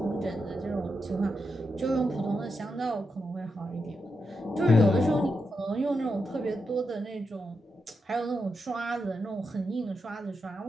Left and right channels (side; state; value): both; normal; correlation 0.86